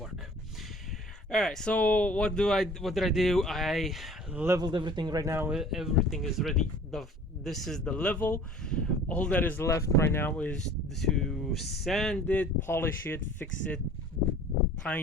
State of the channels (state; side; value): normal; both; correlation 0.48